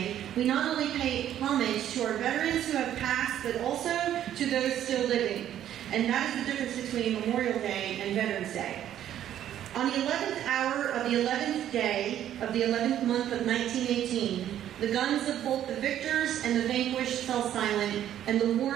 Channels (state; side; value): quieter; left; 11.2 dB